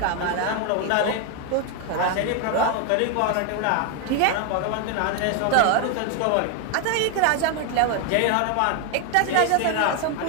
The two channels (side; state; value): both; different; correlation 0.01